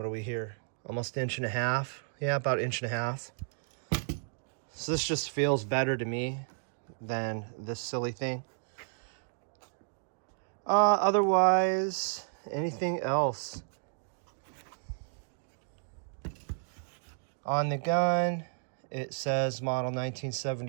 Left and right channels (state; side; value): silent; left; digital silence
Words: are we here? Almost 1.5 inches. Yeah, about 1.5 inches. So this just feels better to me than this silly thing. Otherwise, anything else? On the gun, it says model